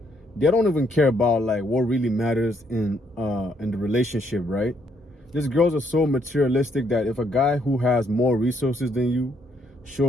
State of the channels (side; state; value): both; normal; correlation 0.71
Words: they don't even care about like what really matters in the relationship, right? These girls are so materialistic that if a guy who has more resources than you